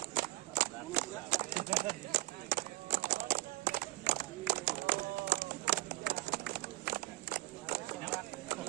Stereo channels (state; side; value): quieter; left; 19.4 dB